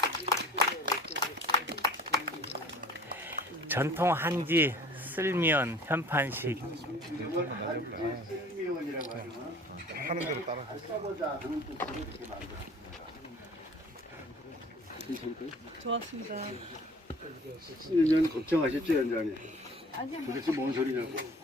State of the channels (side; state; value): both; normal; correlation 0.48